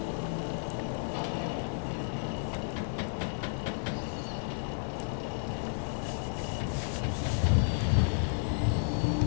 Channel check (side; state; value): right; silent; digital silence